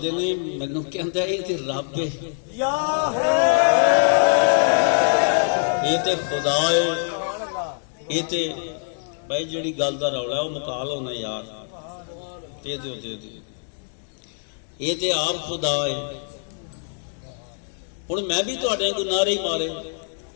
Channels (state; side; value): silent; right; digital silence